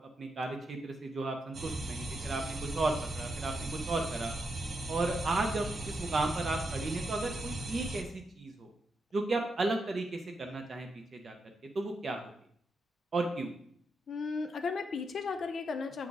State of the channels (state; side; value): normal; both; correlation 0.83